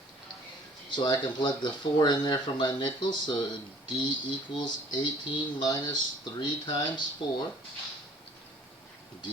So I can plug the 4 in there for my nickels. So d equals 18 minus 3 times 4.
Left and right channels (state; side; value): normal; both; correlation 0.54